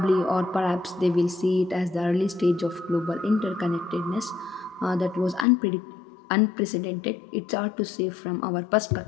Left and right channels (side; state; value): right; drops out; at 5.5 s